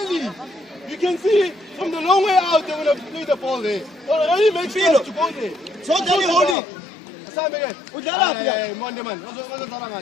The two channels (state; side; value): drops out; right; at 6.6 s